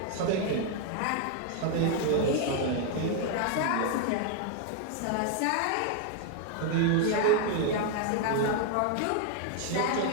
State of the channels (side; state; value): both; different; correlation 0.00